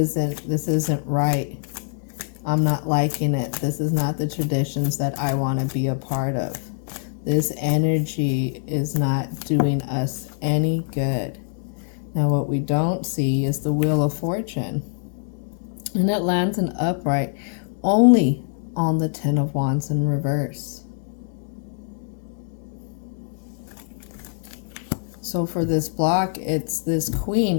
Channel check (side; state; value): right; silent; digital silence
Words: right. I'm not liking it. This is not the traditions that I want to be a part of. This energy is not doing us any good. Now what we don't see is the Wheel of Fortune. And it lands in upright only on the Ten of Wands in reverse. So for this block, it's this queen,